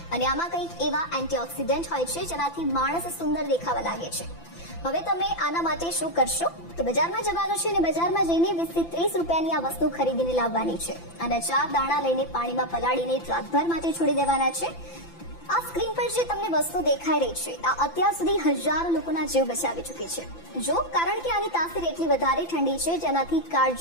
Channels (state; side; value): late; right; 5.9 ms